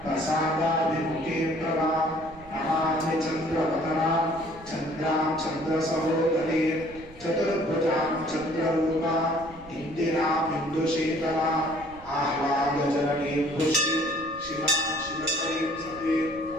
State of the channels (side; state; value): right; noise; rumble, 21 dB below the sound